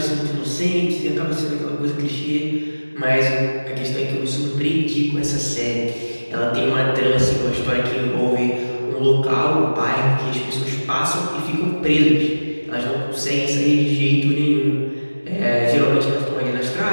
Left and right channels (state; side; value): inverted; both; correlation -1.00